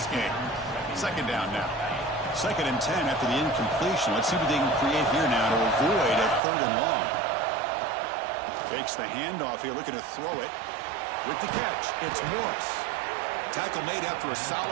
game. Second down now. 2nd and 10 after the incompletion. Let's see what they can create here now to avoid a third and long. Takes the handoff here, looking to throw it. With the catch, it's Morris. Tackle made after a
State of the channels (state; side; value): drops out; left; at 6.4 s